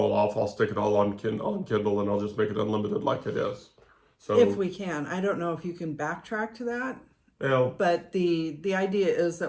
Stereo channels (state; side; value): identical; both; correlation 1.00